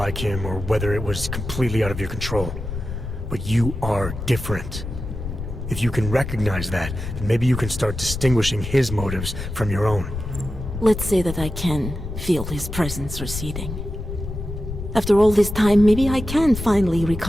him or whether it was completely out of your control. But you are different. If you can recognize that, then maybe you can start distinguishing his motives from your own. Let's say that I can feel his presence receding. After all this time, maybe I can finally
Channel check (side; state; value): left; noise; rumble, 7 dB below the sound